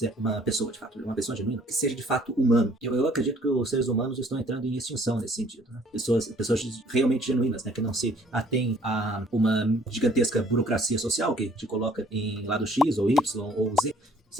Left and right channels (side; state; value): both; normal; correlation 0.59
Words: uma pessoa, de fato, uma pessoa genuína, que seja de fato humano. Eu acredito que os seres humanos estão entrando em extinção nesse sentido, né? Pessoas realmente genuínas, né? Que não se atêm a uma gigantesca burocracia social que te coloca em lado X ou Y ou Z.